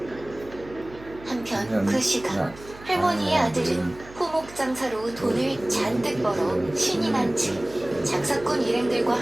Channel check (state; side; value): noise; right; hum, 19 dB below the sound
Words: 한편 그 시간 할머니의 아들은 포목장사로 돈을 잔뜩 벌어 신이 난 채 장사꾼 일행들과